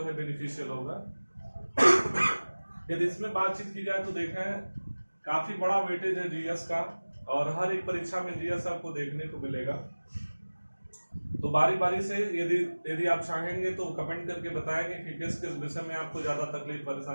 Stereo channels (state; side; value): inverted; both; correlation -1.00